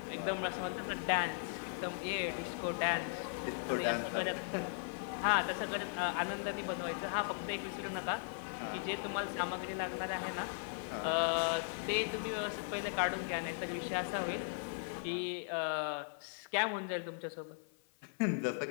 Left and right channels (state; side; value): silent; right; 52 dB below the other